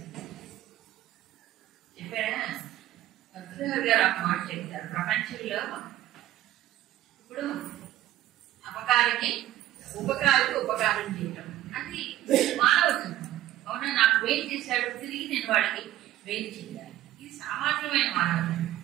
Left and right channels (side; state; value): left; quieter; 14.0 dB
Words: చెప్పాడా భద్రగారు గారు ఒక మాట చెప్తారు. ప్రపంచంలో ఇప్పుడు అపకారికి ఉపకారం చేయటం అది మానవత్వం. అవునా, నాకు వేలు చేశాడు, తిరిగి నేను వాడికి వేలు చేయాలి. ఇది సామాన్యమైన మానవత్వం.